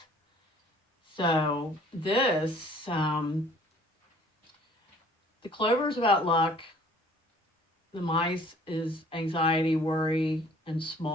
So this, the clover is about luck. The mice is anxiety, worry, and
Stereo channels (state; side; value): normal; both; correlation 0.54